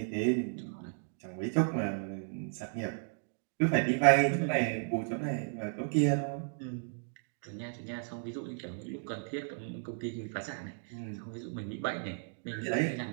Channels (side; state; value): left; silent; digital silence